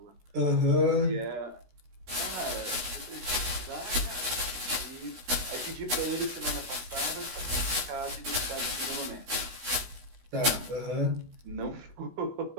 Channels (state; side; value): late; left; 16 ms